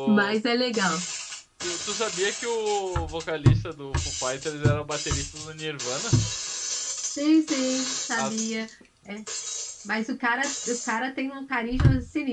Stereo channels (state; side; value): identical; both; correlation 1.00